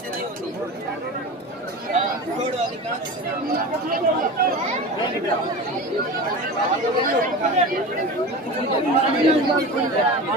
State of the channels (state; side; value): normal; both; correlation 0.30